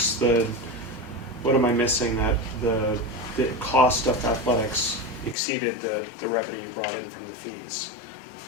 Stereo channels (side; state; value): right; drops out; at 5.4 s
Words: am I missing, that the cost of athletics exceeded the revenue you brought in from the fees?